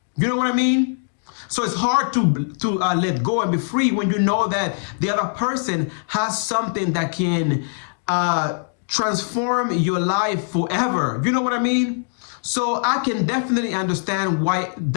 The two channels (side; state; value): right; silent; digital silence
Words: You know what I mean? So it's hard to let go and be free when you know that the other person has something that can transform your life forever. You know what I mean? So I can definitely understand why